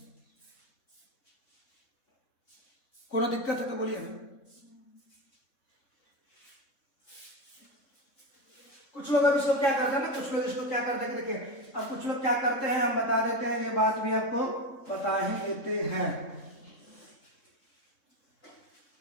कोनो दिक्कत है तो बोलिए ना। कुछ लोग अब इसको क्या करते हैं ना, कुछ लोग इसको क्या करते हैं कि देखिए, अब कुछ लोग क्या करते हैं, हम बता देते हैं, ये बात भी आपको बता ही देते हैं।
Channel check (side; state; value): right; late; 3.6 ms